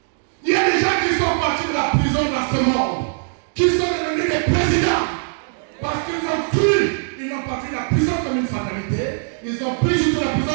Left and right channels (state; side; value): silent; left; digital silence